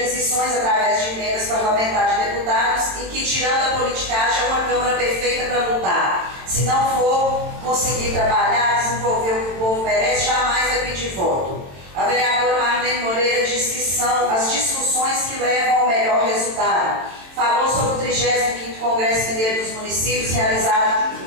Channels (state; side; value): late; left; 22 ms